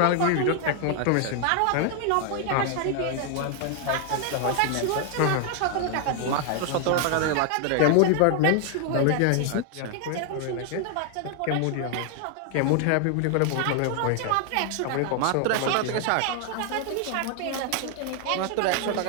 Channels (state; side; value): different; both; correlation 0.00